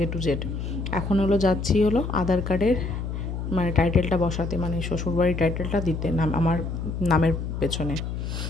টু জেড। এখন যাচ্ছি আধার কার্ডের মানে টাইটেলটা বসাতে, মানে শ্বশুরবাড়ির টাইটেলটা দিতে নাম আমার নামের পেছনে।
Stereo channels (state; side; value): noise; left; hum, 4 dB below the sound